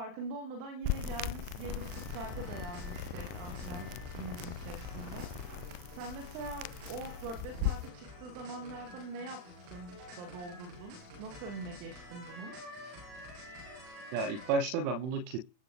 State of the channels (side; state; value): left; late; 39 ms